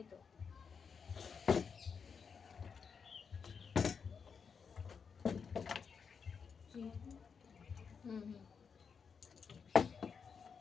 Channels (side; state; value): right; quieter; 6.1 dB